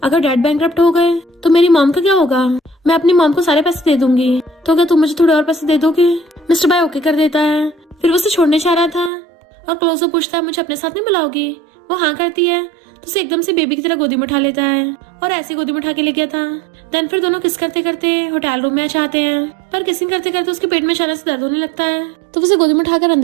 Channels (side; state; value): left; drops out; at 9.1 s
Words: अगर डैड बैंकरप्ट हो गए तो मेरी मॉम का क्या होगा। मैं अपनी मॉम को सारे पैसे दे दूंगी, तो क्या तुम मुझे थोड़े और पैसे दे दोगे। मिस्टर बाय ओके कर देता है। फिर वो उसे छोड़ने चाह रहा था और क्लोजो पूछता है मुझे अपने साथ नहीं बुलाओगी। वो हाँ करती है तो उसे एकदम से बेबी की तरह गोदी में उठा लेता है और ऐसे गोदी में उठा के ले गया था। देन फिर दोनों किस करते करते होटल रूम में आ जाते हैं, पर किसिंग करते करते उसके पेट में अचानक से दर्द होने लगता है। तो उसे गोदी में उठाकर